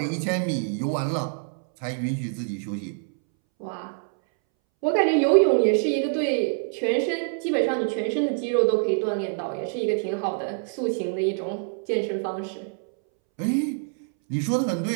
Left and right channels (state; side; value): silent; left; 61 dB below the other